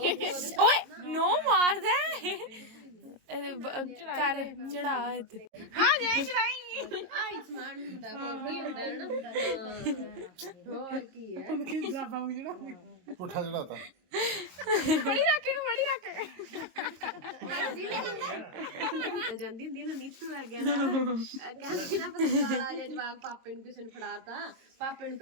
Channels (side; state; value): left; late; 22 ms